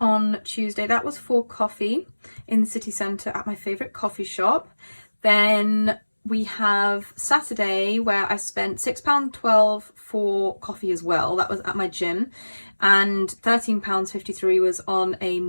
Tuesday. That was for coffee in the city centre at my favourite coffee shop. Then we have Saturday where I spent £6.12 for coffee as well. That was at my gym. And £13.53 was on a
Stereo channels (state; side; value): inverted; both; correlation -1.00